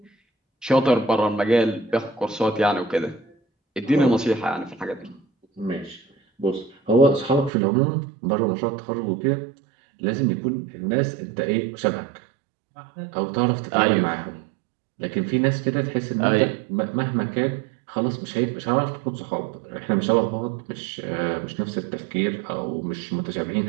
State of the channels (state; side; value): drops out; left; at 7.5 s